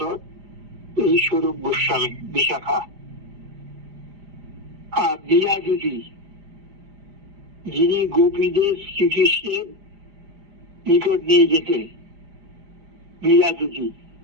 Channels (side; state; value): left; late; 5.0 ms